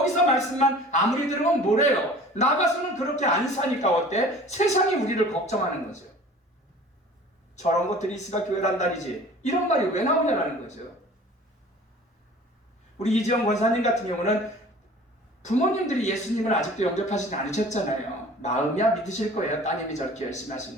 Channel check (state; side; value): normal; both; correlation 0.45